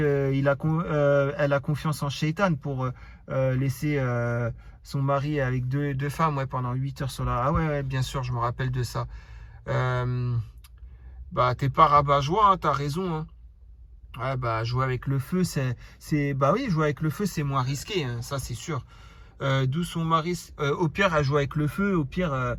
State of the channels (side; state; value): both; identical; correlation 1.00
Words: a confiance en Shaitan pour laisser son mari avec deux femmes ouais, pendant 8 heures sur la... Ah ouais, bien sûr, je me rappelle de ça. Bah, t'es pas rabat-joie, hein, t'as raison. Hein. Ouais, bah, jouer avec le feu, bah oui, jouer avec le feu, c'est moins risqué, hein, ça c'est sûr. D'où son mari, au pire, elle joue avec le feu, au pire,